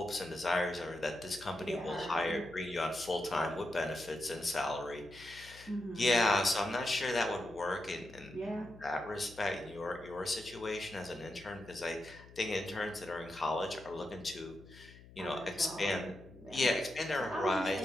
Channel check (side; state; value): left; noise; hum, 20 dB below the sound